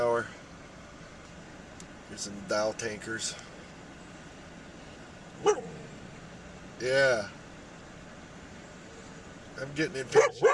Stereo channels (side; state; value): both; identical; correlation 1.00